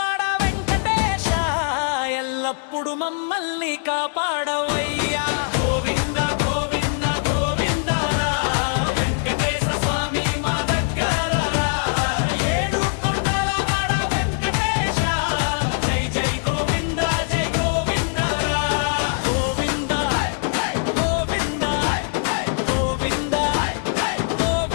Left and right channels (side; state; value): right; silent; 64 dB below the other